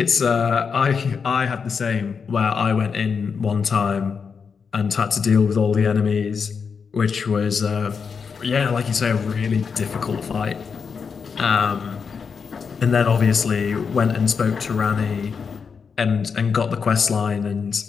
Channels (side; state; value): right; quieter; 5.9 dB